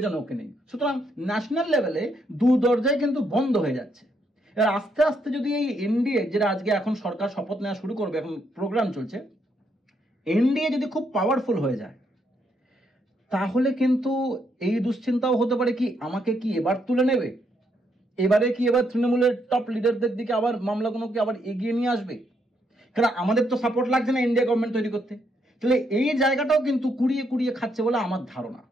ওকে নেই। সুতরাং ন্যাশনাল লেভেলে দু দরজায় কিন্তু বন্ধ হয়ে যাচ্ছে। এবার আস্তে আস্তে যদি এই এনডিএ, যেটা আজকে এখন সরকার শপথ নেওয়া শুরু করবে, এখন প্রোগ্রাম চলছে, এনডিএ যদি খুব পাওয়ারফুল হয়ে যায়, তাহলে কিন্তু এই দুশ্চিন্তাও হতে পারে কি আমাকে কি এবার তুলে নেবে, এবারে কি এবার তৃণমূলের টপ লিডারদের দিকে আবার মামলাগুলোকে আবার এগিয়ে নিয়ে আসবে। কারণ আমাদের তো সাপোর্ট লাগছে না ইন্ডিয়া গভর্নমেন্ট তৈরি করতে। তাহলে এই জায়গাটাও কিন্তু কুড়িয়ে কুড়িয়ে খাচ্ছে বলে আমার ধারণা।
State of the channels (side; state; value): both; normal; correlation 0.76